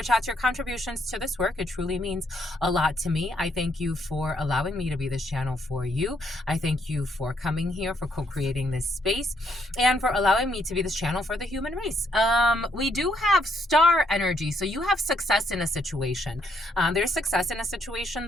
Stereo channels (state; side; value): normal; both; correlation 0.72